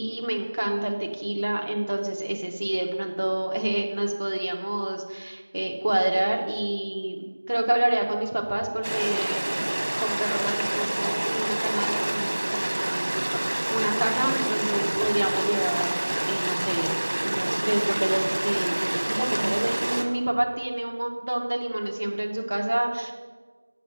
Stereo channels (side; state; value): both; inverted; correlation -1.00